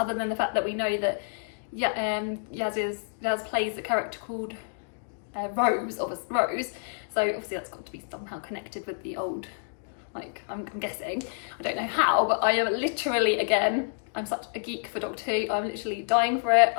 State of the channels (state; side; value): silent; right; digital silence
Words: than the fact that we know that Yaz plays a character called Rose. So obviously that's got to be somehow connected with the old. Like, I'm guessing. I don't know how, but I am literally, again, I'm such a geek for Doctor Who. I'm literally dying for it.